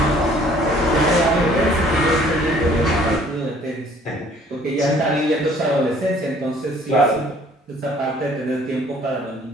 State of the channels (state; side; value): normal; both; correlation 0.57